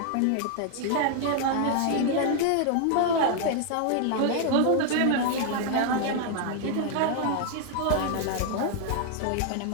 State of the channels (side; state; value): both; different; correlation 0.00